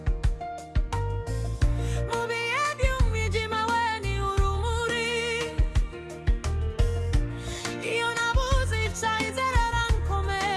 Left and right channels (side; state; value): both; identical; correlation 1.00